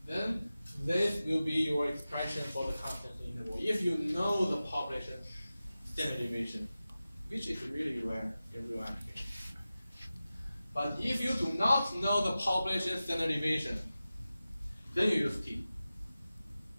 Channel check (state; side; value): inverted; both; correlation -0.95